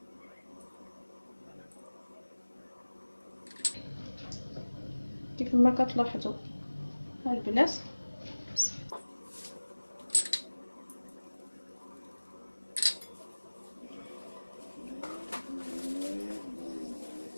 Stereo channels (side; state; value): both; inverted; correlation -1.00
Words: كيف ما كتلاحظوا البنات